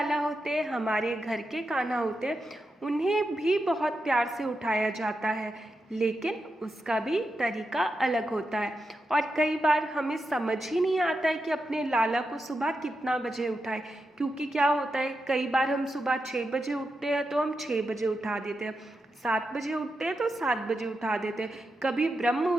होते हैं, हमारे घर के कान्हा होते हैं, उन्हें भी बहुत प्यार से उठाया जाता है, लेकिन उसका भी तरीका अलग होता है। और कई बार हमें समझ ही नहीं आता है कि अपने लाला को सुबह कितना बजे उठाएं, क्योंकि क्या होता है, कई बार हम सुबह 6 बजे उठते हैं तो हम 6 बजे उठा देते हैं, 7 बजे उठते हैं तो 7 बजे उठा देते हैं, कभी ब्रह्म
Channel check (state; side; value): normal; both; correlation 0.87